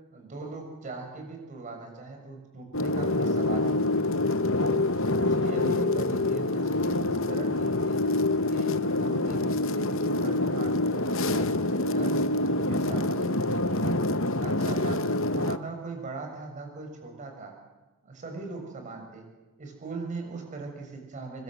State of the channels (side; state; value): both; normal; correlation -0.02